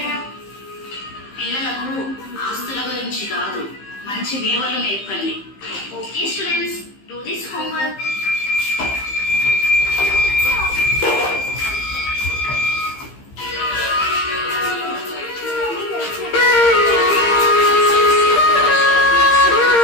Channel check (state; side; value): late; right; 15 ms